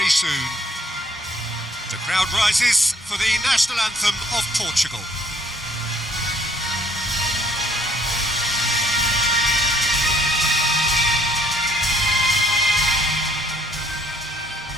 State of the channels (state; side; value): normal; both; correlation 0.64